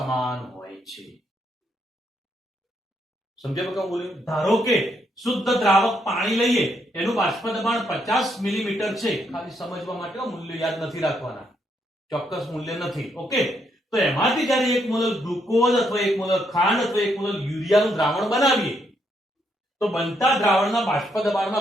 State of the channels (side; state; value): both; normal; correlation 0.75